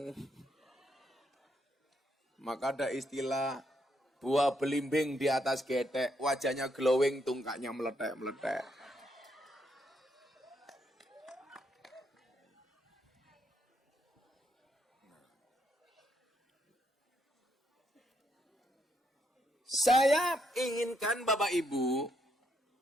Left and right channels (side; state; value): both; normal; correlation 0.76